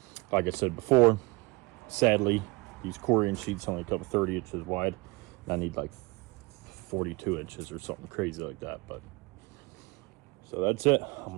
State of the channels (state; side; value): quieter; left; 25.3 dB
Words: Like I said before, sadly, these Corian sheets only come 30 inches wide. And I need like 42 inches or something crazy like that. But so that's it. I'm